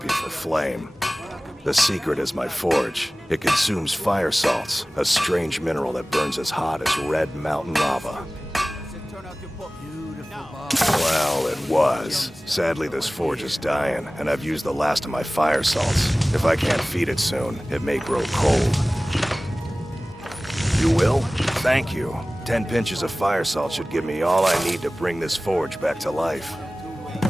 for flame. The secret is my forge. It consumes fire salts, a strange mineral that burns as hot as red mountain lava. Well, it was. Sadly, this forge is dying, and I've used the last of my fire salts. If I can't feed it soon, it may grow cold. You will? Thank you. 10 pinches of fire salt should give me all I need to bring this forge back to life.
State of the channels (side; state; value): both; normal; correlation 0.98